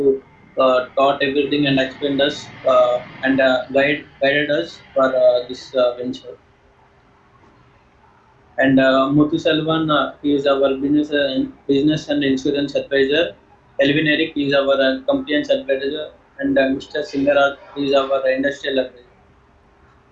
taught everything and explained us and guided us for this venture. And Muthu Selvan, he is our business and insurance advisor. Elvin Eric is our compliance advisor, and Mr. Singaraj is our industrial advisor.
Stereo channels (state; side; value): identical; both; correlation 1.00